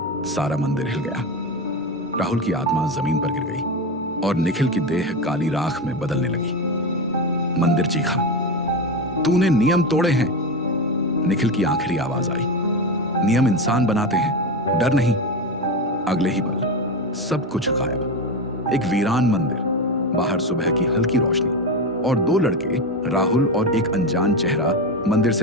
सारा मंदिर हिल गया। राहुल की आत्मा जमीन पर गिर गई और निखिल की देह काली राख में बदलने लगी। मंदिर चीखा, तूने नियम तोड़े हैं। निखिल की आखिरी आवाज आई, नियम इंसान बनाते हैं, डर नहीं। अगले ही पल सब कुछ गायब। एक वीरान मंदिर, बाहर सुबह की हल्की रोशनी, और दो लड़के, राहुल और एक अनजान चेहरा, मंदिर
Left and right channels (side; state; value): both; normal; correlation 0.18